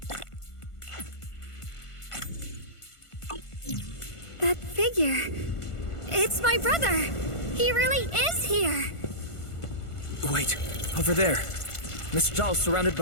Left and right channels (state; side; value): late; right; 1.5 ms